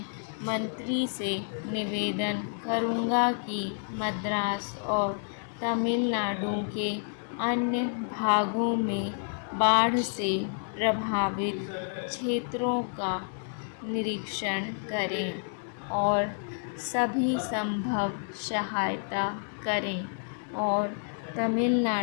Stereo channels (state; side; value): silent; right; 57 dB below the other